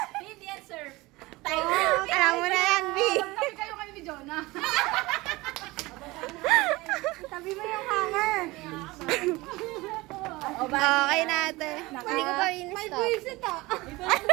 Hindi yan, sir. Alam mo na yan, B. Tabi kayo kayo ni Jonah. Tabi mo yung hanger. Okay natin. Hindi ko pa May buwisit ah.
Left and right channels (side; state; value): left; quieter; 21.3 dB